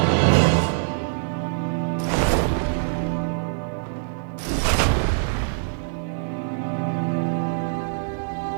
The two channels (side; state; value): left; silent; digital silence